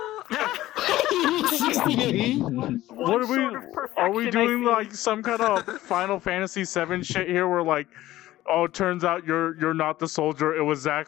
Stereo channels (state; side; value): quieter; right; 15.6 dB